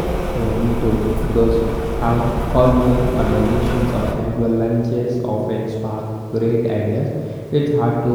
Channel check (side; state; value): both; identical; correlation 1.00